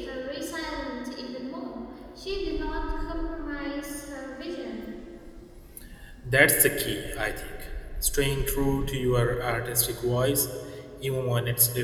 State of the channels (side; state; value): both; identical; correlation 1.00